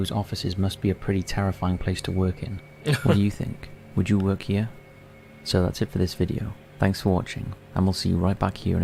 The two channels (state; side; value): identical; both; correlation 1.00